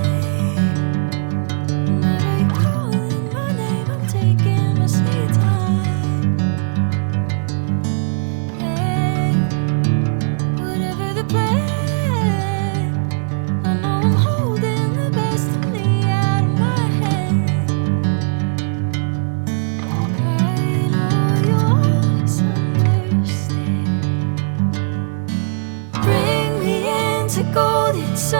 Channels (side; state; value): left; silent; digital silence